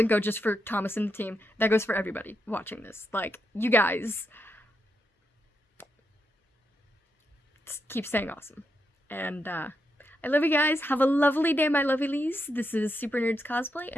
go just for Thomas and the team. That goes for everybody watching this. Like, you guys keep staying awesome. And I love you guys. Have a lovely day, my lovelies. This is SuperNerds Cosplay,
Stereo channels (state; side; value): normal; both; correlation 0.83